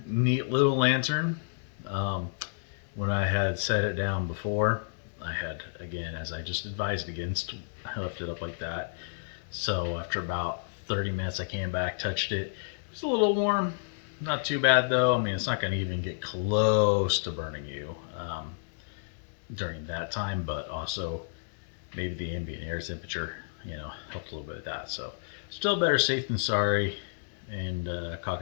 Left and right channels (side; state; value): right; silent; digital silence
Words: neat little lantern. When I had set it down before, I had, again, as I just advised against, I left it up like that. So after about 30 minutes I came back, touched it. It was a little warm, not too bad though. I mean, it's not going to even get close to burning you during that time, but also maybe the ambient air temperature helped a little bit with that. So still better safe than sorry, and